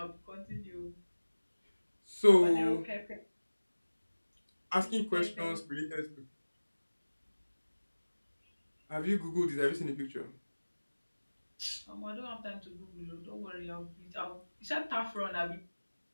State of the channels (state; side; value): inverted; both; correlation -1.00